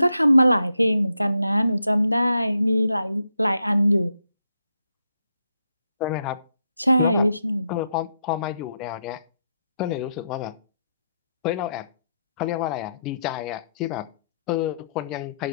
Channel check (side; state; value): both; inverted; correlation -0.80